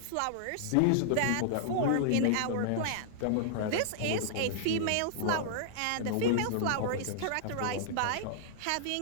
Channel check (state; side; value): different; both; correlation -0.01